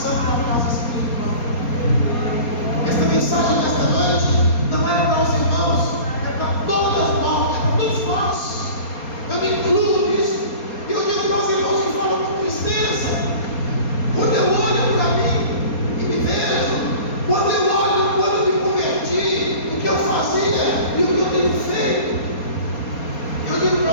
da casa espiritual. Esta mensagem desta noite não é para os irmãos, é para todas nós, é para todos nós. Eu me incluo nisso. E eu digo para os irmãos que falam com tristeza, quando eu olho para mim e me vejo, quando eu olho, quando eu me converti, o que eu fazia e o que eu tenho feito, eu digo para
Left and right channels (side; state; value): right; late; 4.3 ms